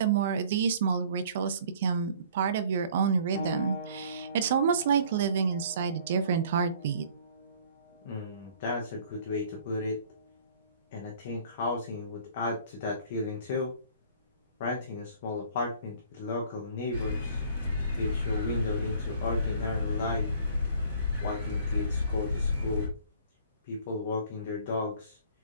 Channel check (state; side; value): inverted; both; correlation -0.53